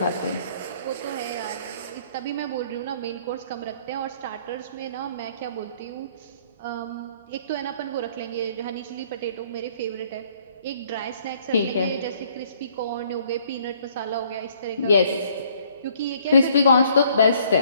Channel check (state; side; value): inverted; both; correlation -0.61